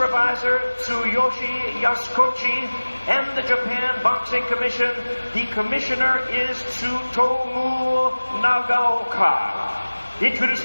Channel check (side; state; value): both; inverted; correlation -1.00